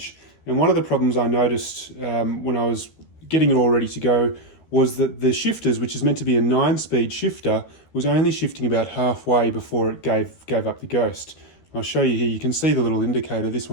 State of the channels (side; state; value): right; late; 13 ms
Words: And one of the problems I noticed when I was getting it all ready to go was that the shifters, which is meant to be a 9-speed shifter, was only shifting about halfway before it gave up the ghost. I'll show you here. You can see the little indicator. This